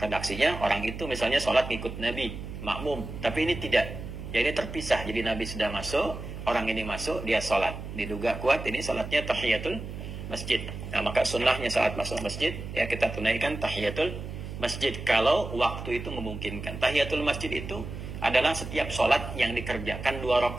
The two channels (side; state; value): right; noise; hum, 9 dB below the sound